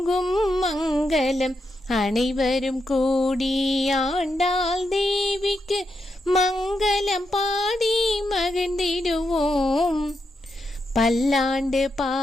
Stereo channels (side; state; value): both; normal; correlation 0.84